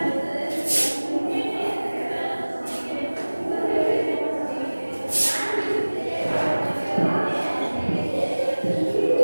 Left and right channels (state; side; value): inverted; both; correlation -1.00